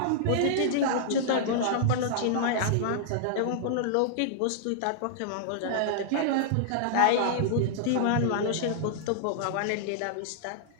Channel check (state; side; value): different; both; correlation -0.01